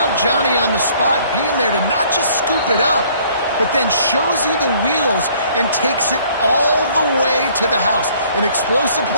Johnny on the spot being there to not just scoop it up, but then shows you the wheels and takes it all the way to the house. An explosive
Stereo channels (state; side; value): inverted; both; correlation -0.59